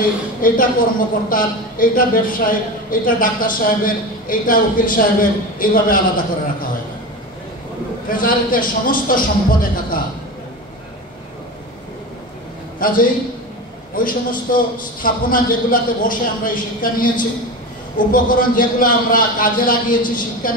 এইটা কর্মকর্তার, এইটা ব্যবসায়ী, এইটা ডাক্তার সাহেবের, এইটা উকিল সাহেবের, এইভাবে আলাদা করে রাখা হয় না। ট্রেজারিতে সমস্ত সম্পদ একাকার। কাজেই ওই সমস্ত স্থাপনা যেগুলাতে বসে আমরা এই শিক্ষা নিয়েছি, উপকরণ যেগুলো আমরা কাজে লাগিয়েছি শিক্ষা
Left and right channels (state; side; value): normal; both; correlation 0.26